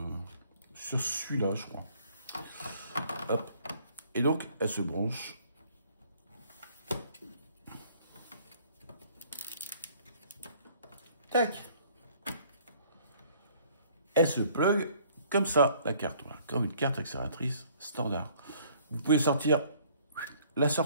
celui-là, je crois. Hop. Et donc, elle se branche. Tac. Elle se plug comme ça, la carte. Voilà, comme une carte accélératrice standard. Vous pouvez sortir la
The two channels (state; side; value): inverted; both; correlation -0.59